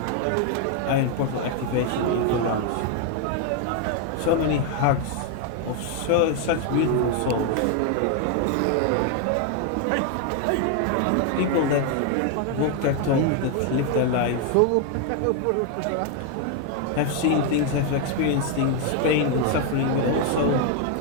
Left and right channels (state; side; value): different; both; correlation 0.01